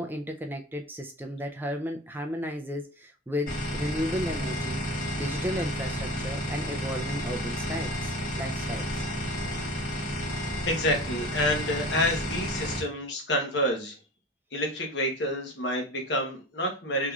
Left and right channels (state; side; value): normal; both; correlation 0.35